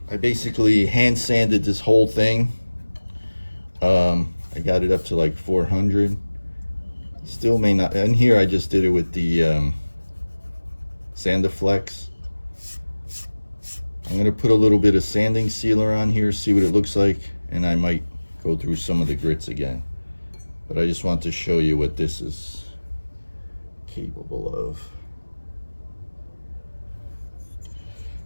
I basically hand sanded this whole thing. I got it up to like 400. Still may not, and here I just did it with the Sandiflex. I'm gonna put a little bit of sanding sealer on here, see what it looks like, and I might go through some of the grits again. But I just want to show you what this is capable of.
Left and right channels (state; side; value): inverted; both; correlation -1.00